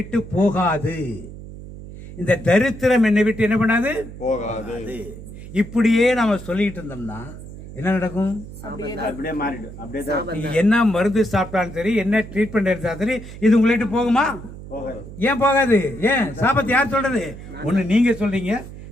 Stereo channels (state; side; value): noise; right; hum, 14 dB below the sound